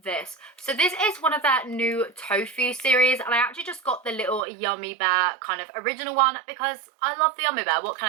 So this is one of their new tofu series and I actually just got the little Yummy Bear kind of original one because I love the Yummy Bear, what can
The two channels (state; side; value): drops out; left; at 4.4 s